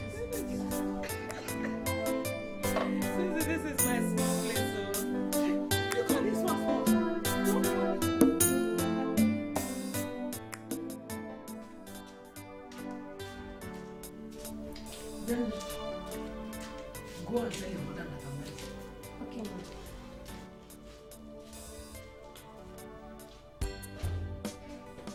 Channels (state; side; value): identical; both; correlation 1.00